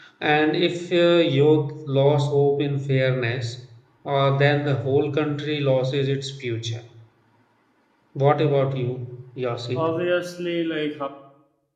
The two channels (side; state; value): both; identical; correlation 1.00